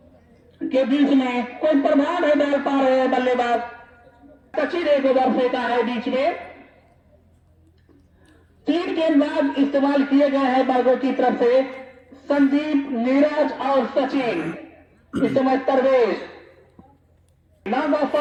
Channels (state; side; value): identical; both; correlation 1.00